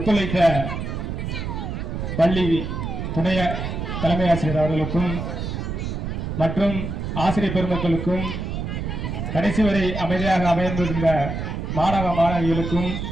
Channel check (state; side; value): noise; right; rumble, 4 dB below the sound